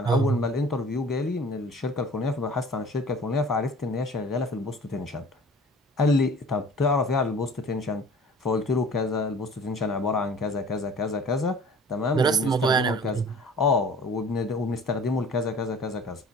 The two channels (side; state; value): both; normal; correlation 0.46